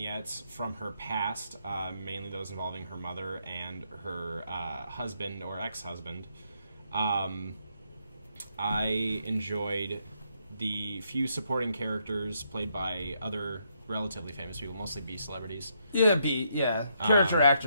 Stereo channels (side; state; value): both; inverted; correlation -0.76